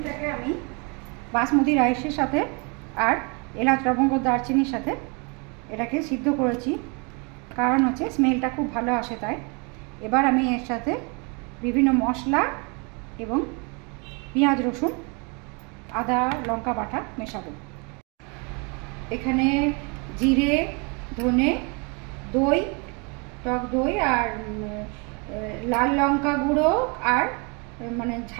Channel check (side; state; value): left; quieter; 32.5 dB